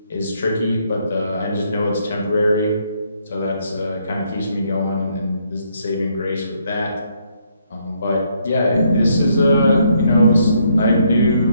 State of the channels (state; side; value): inverted; both; correlation -0.72